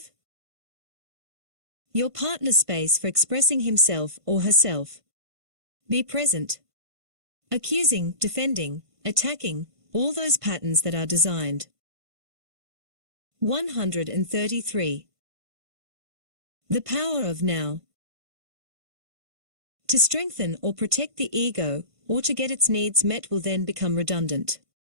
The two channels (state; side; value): late; left; 1.5 ms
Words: your partner space for expressing himself or herself. Be present. Accusing, defending, attacking, all those patterns that are designed. 133. The power of now. To strengthen or protect the ego, or to get its needs met will then become redundant.